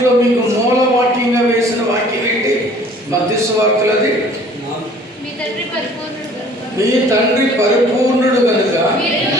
మీకు మూల వాక్యంగా వేసిన వాక్యం ఏంటి? మత్తయి సువార్తలది. మీ తండ్రి పరిపూర్ణుడు కనుక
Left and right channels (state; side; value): normal; both; correlation 0.52